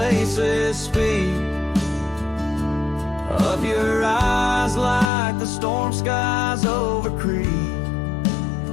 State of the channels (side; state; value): right; drops out; at 5.1 s